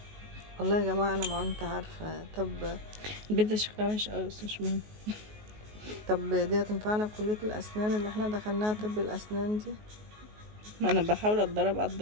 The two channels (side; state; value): left; late; 19 ms